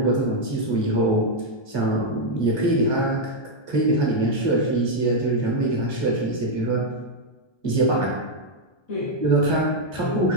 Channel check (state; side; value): late; right; 1.2 ms